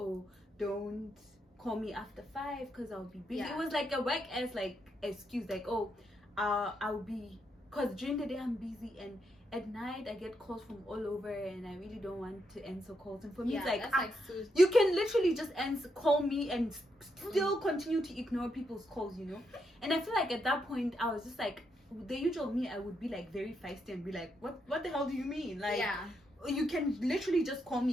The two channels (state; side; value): normal; both; correlation 0.80